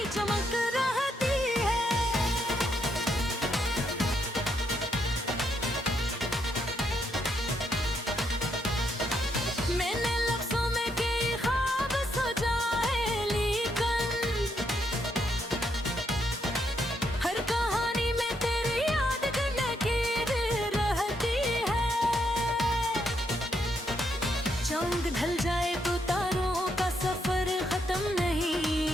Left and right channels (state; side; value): normal; both; correlation 0.77